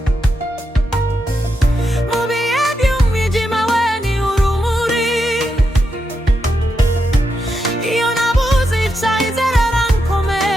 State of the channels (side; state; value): both; normal; correlation 0.85